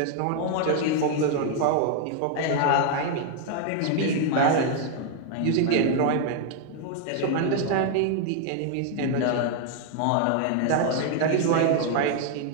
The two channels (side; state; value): both; different; correlation 0.00